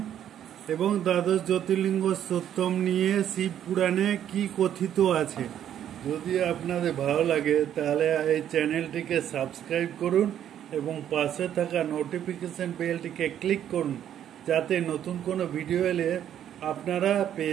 এবং দ্বাদশ জ্যোতির্লিঙ্গ সত্যম নিয়ে শিব পুরাণে কি কথিত আছে। যদি আপনাদের ভালো লাগে তাহলে এই চ্যানেলটিকে সাবস্ক্রাইব করুন এবং পাশে থাকা নোটিফিকেশন বেলটিকে ক্লিক করুন, যাতে নতুন কোনো ভিডিও এলে আপনারা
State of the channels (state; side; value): quieter; left; 10.3 dB